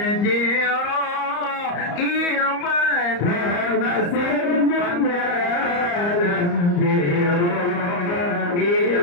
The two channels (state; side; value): late; right; 34 ms